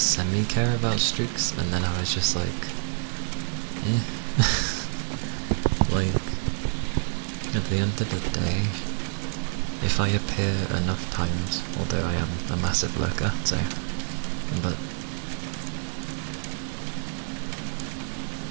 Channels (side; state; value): left; silent; digital silence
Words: about streaks, and then I was just like, eh. Like, at the end of the day, if I appear enough times, although I am a massive lurker, so, but